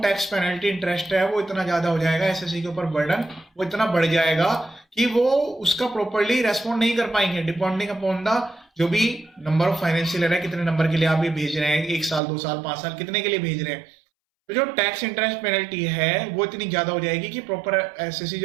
tax penalty interest है वो इतना ज्यादा हो जाएगा, एसएससी के ऊपर बर्डन वो इतना बढ़ जाएगा कि वो उसका प्रॉपर्ली रेस्पॉन्ड नहीं कर पाएंगे, डिपेंडिंग अपॉन द जो भी नंबर ऑफ फाइनेंशियल ईयर है, कितने नंबर के लिए आप ये भेज रहे हैं, 1 साल 2 साल 5 साल कितने के लिए भेज रहे हैं, तो जो टैक्स इंटरेस्ट पेनल्टी है वो इतनी ज्यादा हो जाएगी कि प्रॉपर एसएससी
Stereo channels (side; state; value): left; drops out; at 12.2 s